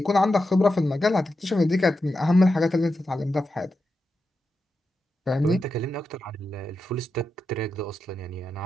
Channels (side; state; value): both; normal; correlation 0.88